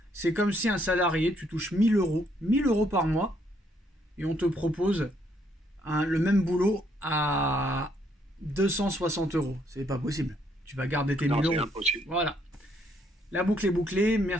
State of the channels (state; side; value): normal; both; correlation 0.70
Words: C'est comme si un salarié, tu touches 1000 euros, 1000 euros par mois, et on te propose le même boulot à 260 euros. C'est pas possible. Tu vas garder tes Non, 1000 c'est euros. impossible. Voilà. La boucle est bouclée.